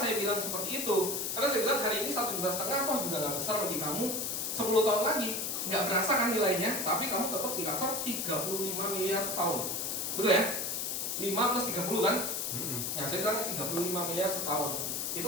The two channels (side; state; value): left; noise; hiss, 1 dB below the sound